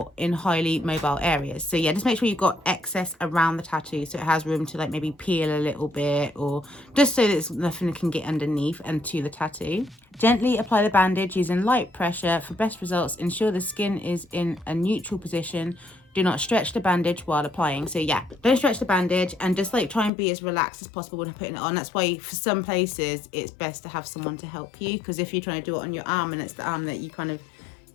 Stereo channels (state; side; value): drops out; right; at 20.1 s